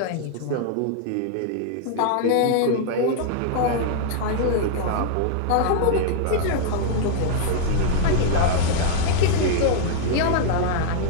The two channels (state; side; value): different; both; correlation 0.00